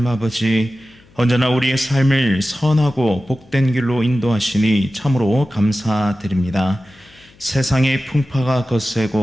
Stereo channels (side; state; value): left; noise; hum, 28 dB below the sound